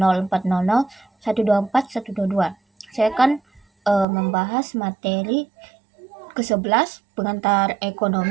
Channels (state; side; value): drops out; left; at 4.0 s